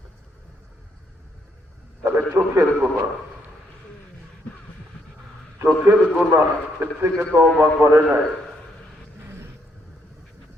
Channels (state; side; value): normal; both; correlation 0.73